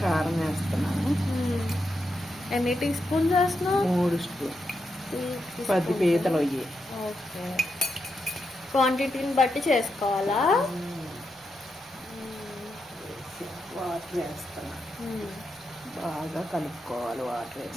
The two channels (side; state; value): both; normal; correlation 0.85